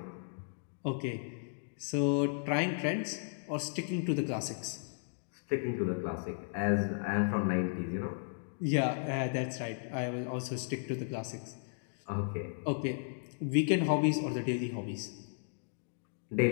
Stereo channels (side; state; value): right; silent; digital silence